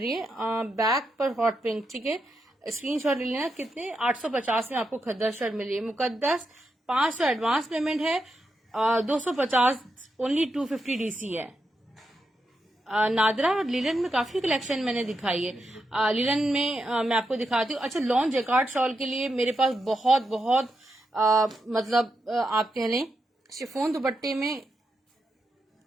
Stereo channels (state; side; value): normal; both; correlation 0.85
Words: है बैक पर हॉट पिंक, ठीक है। स्क्रीनशॉट ले लेना। कितने 850 में आपको खद्दर शर्ट मिल रही है। मुकद्दस 500 एडवांस पेमेंट है, 250 ओनली 250 डीसी है। नादरा और लिलन में काफी कलेक्शन मैंने दिखाई है। लिलन में मैं आपको दिखाती हूँ। अच्छा, लॉन्ग जैकार्ड शॉल के लिए मेरे पास बहुत बहुत मतलब आप कह लें शिफॉन दुपट्टे में